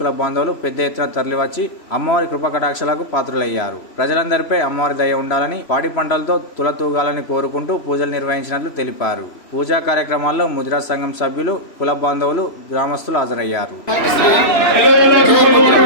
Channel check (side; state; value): right; late; 3.0 ms